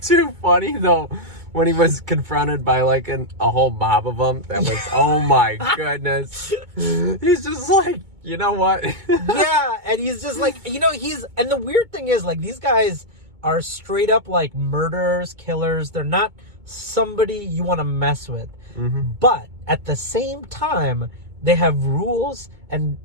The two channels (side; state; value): left; late; 2.2 ms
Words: too funny though. When he was confronted by like a whole mob of them, that was, oh my goodness. He's just like, you know what? Yeah, and he's just like, and the weird thing is like these guys are straight up like murderers, killers. They're not somebody you want to mess with. But at the same time, they have rules and